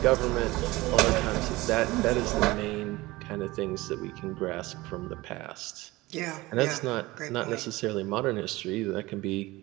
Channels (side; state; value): left; quieter; 20.2 dB